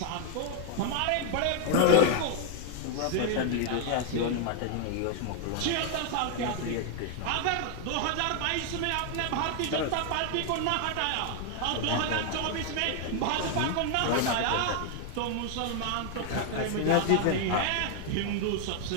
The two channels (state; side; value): different; both; correlation 0.00